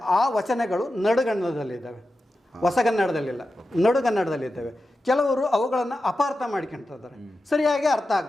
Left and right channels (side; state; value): both; normal; correlation 0.92